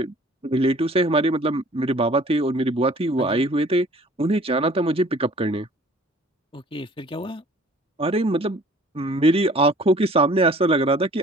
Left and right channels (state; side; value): normal; both; correlation 0.51